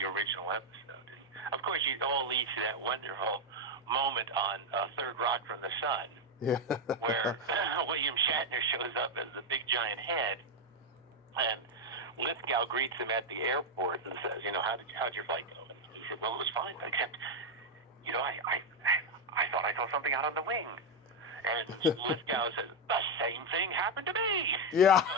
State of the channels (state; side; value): normal; both; correlation 0.04